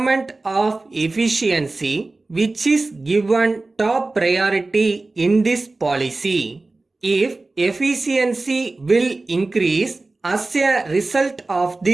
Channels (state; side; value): quieter; left; 3.3 dB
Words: of efficiency which is given top priority in this policy. If efficiency will increase as a result of